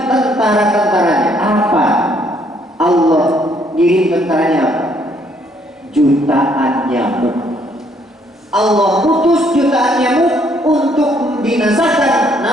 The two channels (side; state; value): both; normal; correlation 0.67